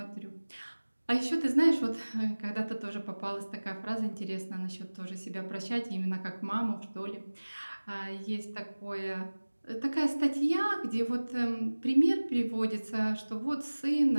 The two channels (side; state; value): both; inverted; correlation -1.00